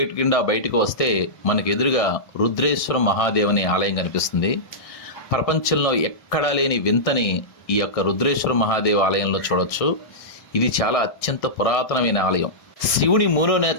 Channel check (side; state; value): right; late; 1.6 ms